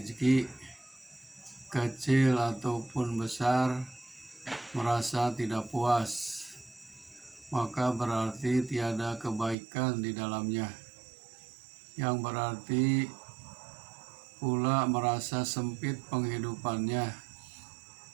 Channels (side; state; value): left; drops out; at 9.6 s